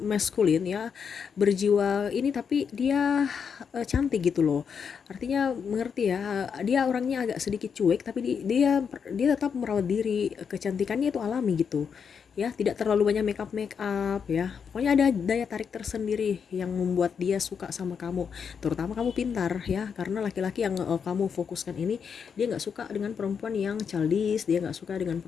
ya, berjiwa ini, tapi dia cantik gitu loh. Artinya mengerti ya, dia orangnya agak sedikit cuek tapi dia tetap merawat diri, kecantikannya itu alami gitu ya, tidak terlalu banyak make up ya. Pokoknya ada daya tarik tersendiri yang membuat dia suka sama kamu. Terutama kamu pintar ya, karena laki-laki yang kamu fokuskan ini, dia nggak suka dengan perempuan yang childish, dia nggak suka dengan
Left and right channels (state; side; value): quieter; right; 6.7 dB